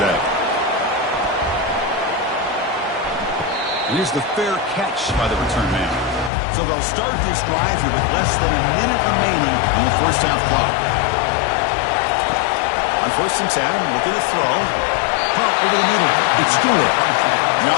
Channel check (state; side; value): drops out; right; at 6.3 s